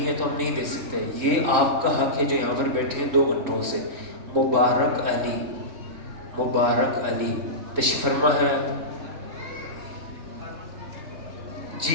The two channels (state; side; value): late; left; 3.7 ms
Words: ہے تو ہم نہیں دے سکتے. یہ آپ کا حق ہے جو یہاں پر بیٹھے ہیں 2 گھنٹوں سے. مبارک علی, مبارک علی تشریف فرما ہے